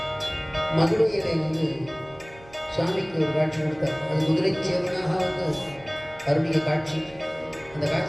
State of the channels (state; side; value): noise; right; hum, 23 dB below the sound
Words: மதுரையிலே சுவாமிக்கு ஒரு காட்சி கொடுத்தார். அது குதிரை சேவனாக அருளிய காட்சி. அந்த